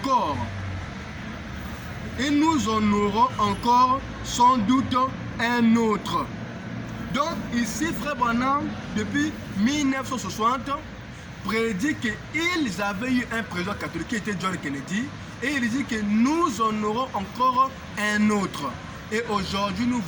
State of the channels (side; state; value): both; identical; correlation 1.00